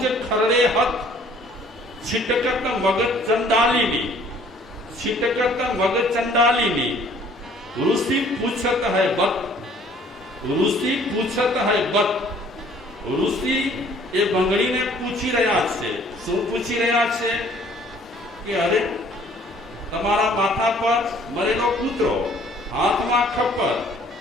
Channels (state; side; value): normal; both; correlation 0.56